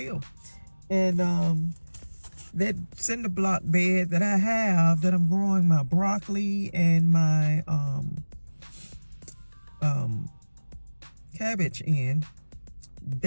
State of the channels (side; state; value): both; inverted; correlation -1.00